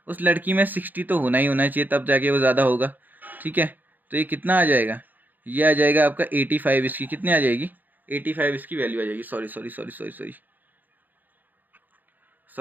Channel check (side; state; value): left; late; 0.085 ms